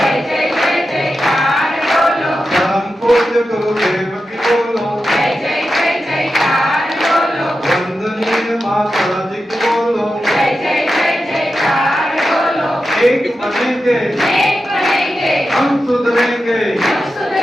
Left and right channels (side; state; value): both; normal; correlation 0.90